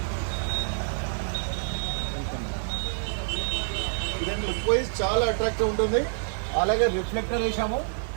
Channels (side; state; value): left; silent; digital silence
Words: ఇదండి లుక్ వైజ్ చాలా అట్రాక్టివ్ ఉంటుంది. అలాగే రిఫ్లెక్టర్ వేసాము.